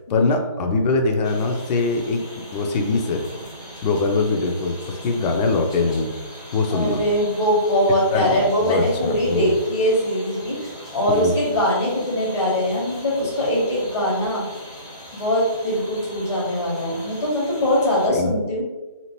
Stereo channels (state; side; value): inverted; both; correlation -0.40